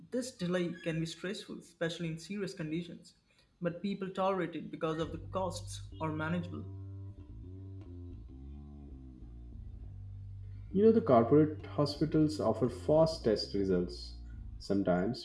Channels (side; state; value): both; identical; correlation 1.00